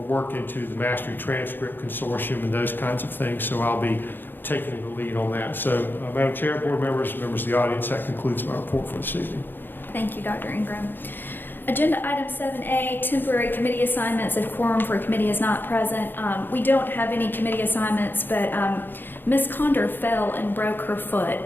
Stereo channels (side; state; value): right; late; 0.096 ms